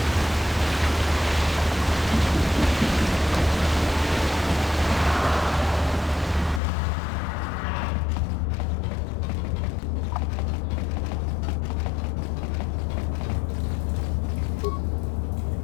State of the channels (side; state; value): right; drops out; at 6.6 s